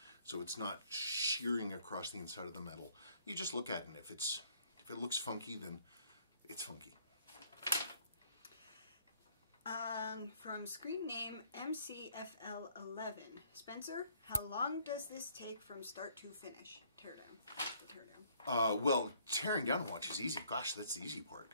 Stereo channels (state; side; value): inverted; both; correlation -0.63